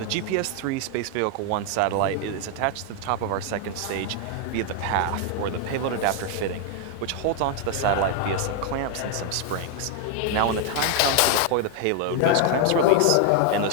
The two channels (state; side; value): different; both; correlation 0.00